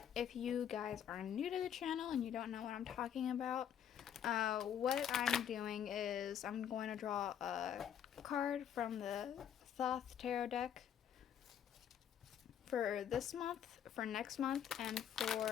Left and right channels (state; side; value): quieter; right; 9.2 dB